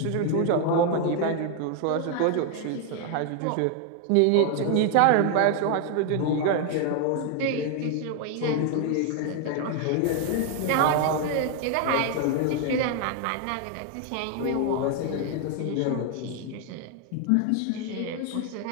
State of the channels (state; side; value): different; both; correlation 0.01